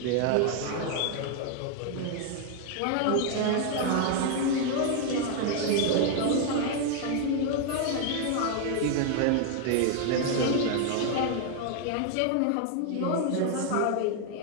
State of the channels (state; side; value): different; both; correlation 0.00